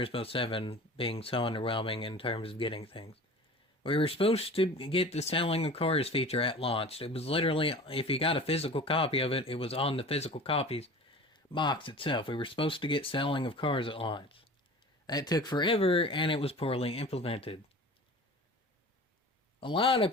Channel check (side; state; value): both; normal; correlation 0.39